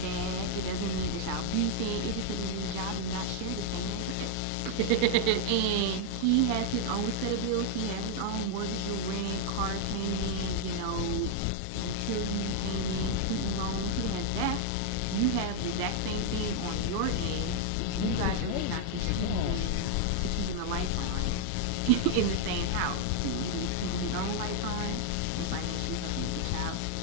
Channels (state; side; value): different; both; correlation 0.00